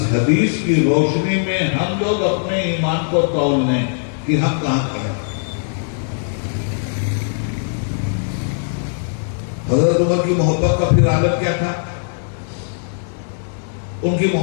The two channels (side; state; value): right; silent; digital silence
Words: حدیث کی روشنی میں ہم لوگ اپنے ایمان کو تول لیں کہ ہم کہاں کھڑے ہیں۔ حضرت عمر کی محبت کا پھر عالم کیا تھا؟ ان کی